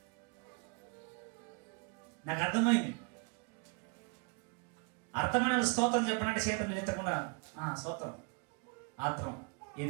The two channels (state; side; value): quieter; left; 33.2 dB